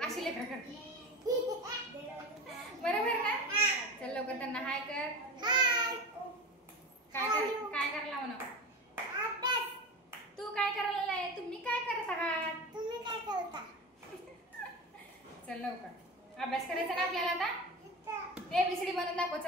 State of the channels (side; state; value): both; normal; correlation 0.28